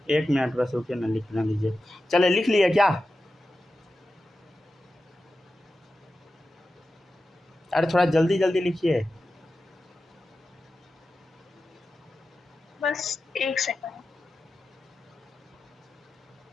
1 मिनट बस रुकिए ना, लिखना लीजिए। चले, लिख लिए क्या? अरे थोड़ा जल्दी जल्दी लिखिए। बस 1 सेकंड।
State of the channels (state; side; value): normal; both; correlation 0.92